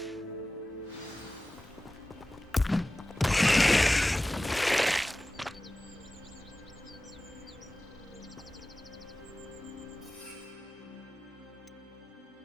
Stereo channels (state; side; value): normal; both; correlation 0.96